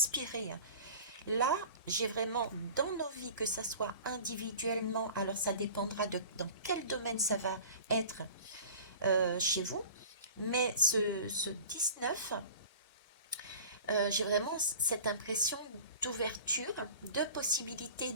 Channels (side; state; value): both; inverted; correlation -0.40